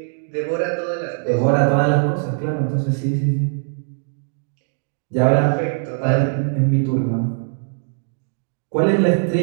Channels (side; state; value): left; silent; digital silence